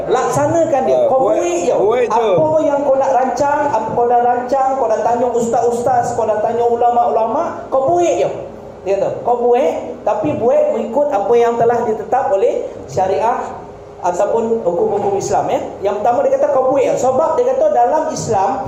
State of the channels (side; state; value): both; identical; correlation 1.00